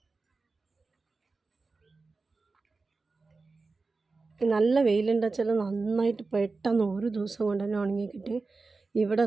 നല്ല വെയിലുണ്ടെന്ന് വെച്ചാൽ നന്നായിട്ട് പെട്ടെന്ന് ഒരു ദിവസം കൊണ്ട് തന്നെ ഉണങ്ങി കിട്ടി. ഇവിടെ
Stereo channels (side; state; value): left; quieter; 3.9 dB